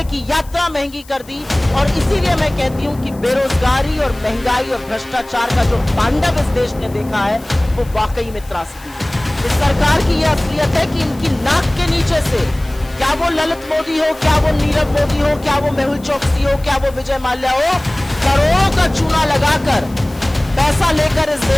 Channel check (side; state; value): left; noise; hiss, 23 dB below the sound